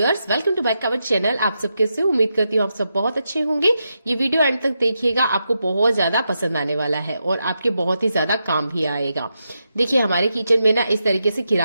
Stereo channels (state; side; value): inverted; both; correlation -0.86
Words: welcome to back our channel. आप सब कैसे हो? उम्मीद करती हूँ आप सब बहुत अच्छे होंगे। ये वीडियो एंड तक देखिएगा, आपको बहुत ज्यादा पसंद आने वाला है और आपके बहुत ही ज्यादा काम भी आएगा। देखिए, हमारे किचन में ना इस तरीके से